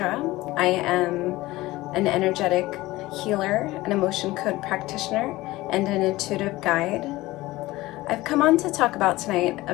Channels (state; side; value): quieter; right; 18.6 dB